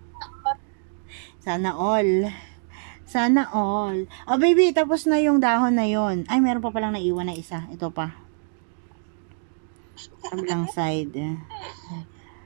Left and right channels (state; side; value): silent; left; digital silence